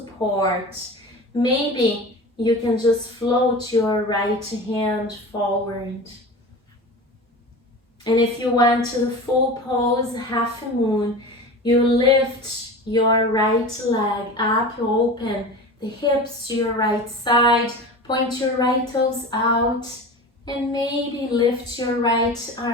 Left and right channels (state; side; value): normal; both; correlation 0.32